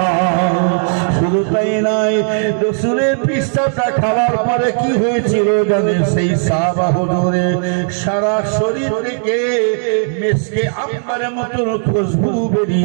শুধু তাই নয়, রসুলের পিসাবটা খাওয়ার পরে কি হয়েছিল জানেন, সেই সাহাবা হুজুরে সারা শরীর থেকে মেসকে আম্বারের মতন খুশবু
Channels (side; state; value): left; silent; 69 dB below the other